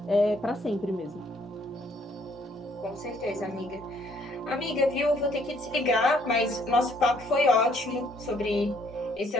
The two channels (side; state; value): both; normal; correlation 0.65